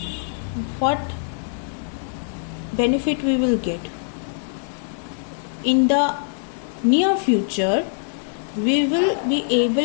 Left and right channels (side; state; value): right; silent; digital silence